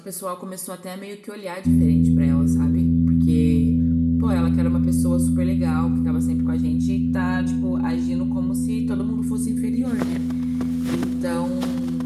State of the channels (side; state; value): both; identical; correlation 1.00